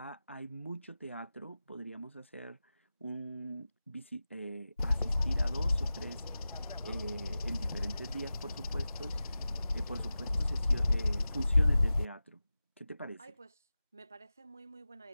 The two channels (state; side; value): inverted; both; correlation -0.94